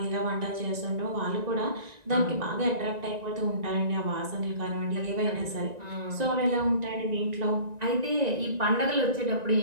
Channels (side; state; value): left; late; 1.9 ms